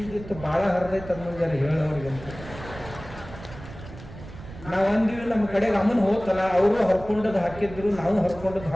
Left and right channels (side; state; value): right; noise; rumble, 15 dB below the sound